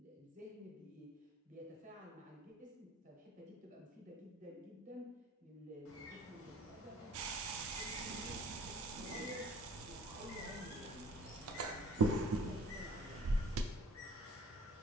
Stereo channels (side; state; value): both; normal; correlation 0.53